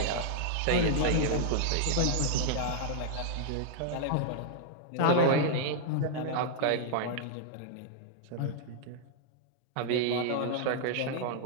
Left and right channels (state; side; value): different; both; correlation -0.01